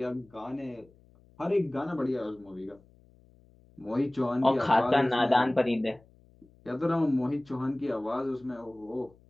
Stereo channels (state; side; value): noise; left; hum, 28 dB below the sound